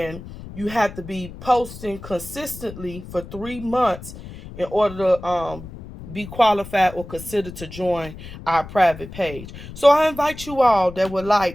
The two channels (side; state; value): left; noise; rumble, 14 dB below the sound